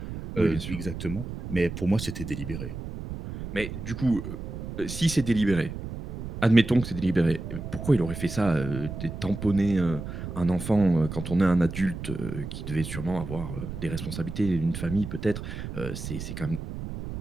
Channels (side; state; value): right; noise; rumble, 8 dB below the sound